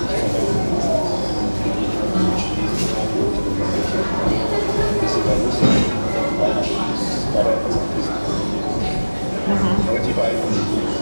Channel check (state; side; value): inverted; both; correlation -1.00